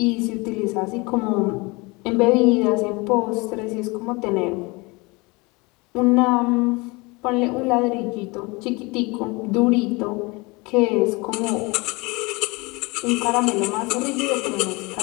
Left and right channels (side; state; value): right; quieter; 25.7 dB